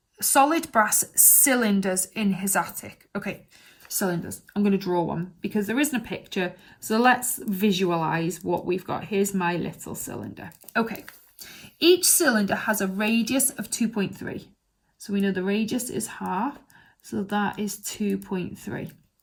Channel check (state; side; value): identical; both; correlation 1.00